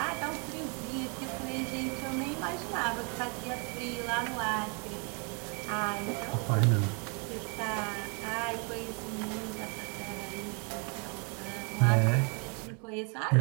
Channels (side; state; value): left; quieter; 36.0 dB